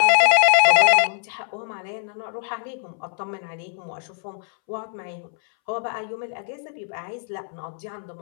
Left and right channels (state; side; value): silent; right; 63 dB below the other